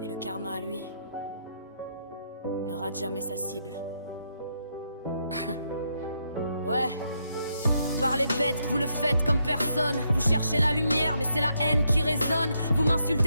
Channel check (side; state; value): both; inverted; correlation -0.78